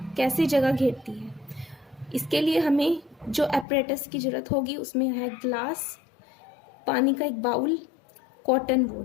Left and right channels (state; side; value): drops out; right; at 3.7 s